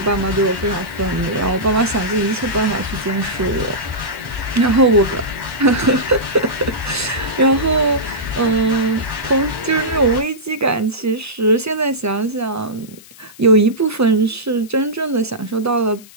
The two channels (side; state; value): left; noise; hiss, 22 dB below the sound